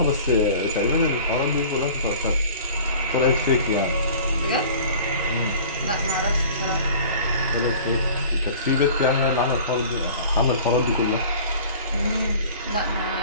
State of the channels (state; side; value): inverted; both; correlation -0.45